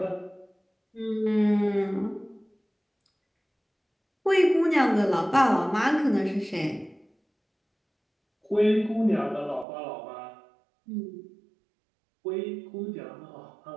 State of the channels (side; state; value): left; drops out; at 9.7 s